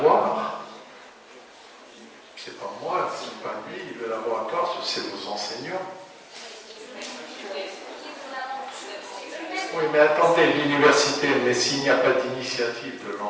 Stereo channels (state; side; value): identical; both; correlation 1.00